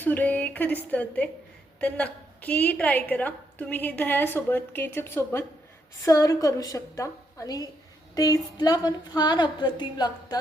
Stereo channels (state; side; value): normal; both; correlation 0.77